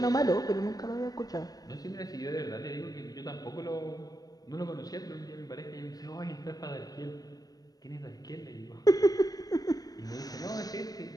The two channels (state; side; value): late; right; 0.18 ms